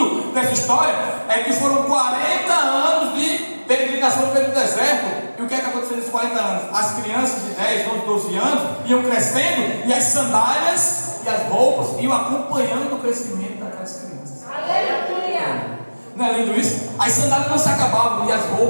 dessa história é que foram 40 anos de peregrinação pelo deserto. E o que é que aconteceu nesses 40 anos? As crianças de 10, 11, 12 anos iam crescendo, e as sandálias e as roupas iam acompanhando o crescimento daquelas crianças. Aleluia! Não é lindo isso? As sandálias não se acabavam e as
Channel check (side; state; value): both; inverted; correlation -1.00